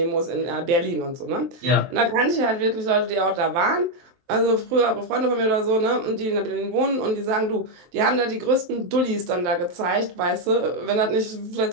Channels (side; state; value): left; late; 23 ms